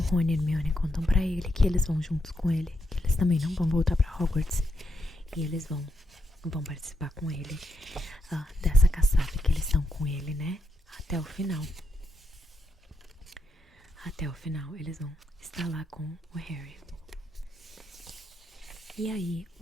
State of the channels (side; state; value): both; normal; correlation 0.82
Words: e a Hermione contam pra ele que eles vão juntos com ele, que eles também não vão voltar pra Hogwarts, e eles vão participar com ele dessa caçada que eles estão com ele, né, até o final. Até o final eles vão estar lá com o Harry. E aí